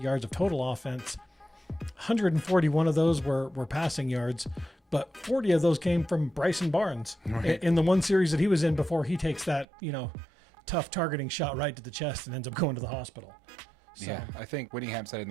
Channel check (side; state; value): left; drops out; at 9.7 s